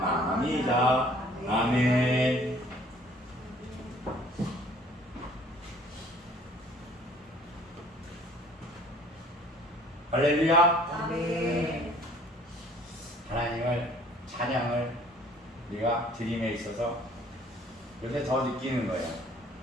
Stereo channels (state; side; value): normal; both; correlation 0.55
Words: 아멘. 할렐루야. 아멘. 하나님을 찬양을 우리가 드림에 있어서 요새 더 느끼는 거예요.